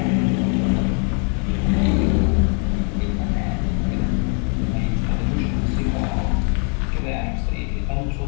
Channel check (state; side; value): quieter; right; 39.7 dB